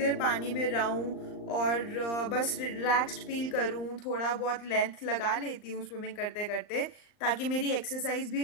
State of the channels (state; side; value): late; right; 39 ms